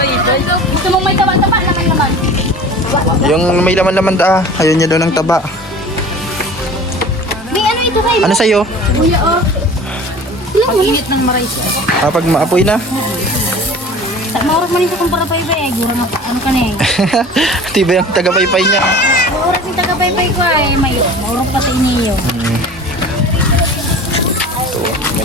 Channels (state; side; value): normal; both; correlation 0.41